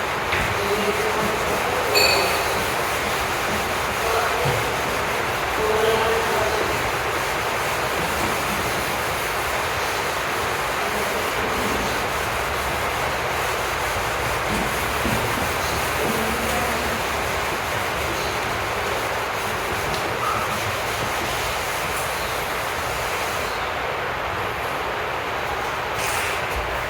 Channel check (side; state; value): both; identical; correlation 1.00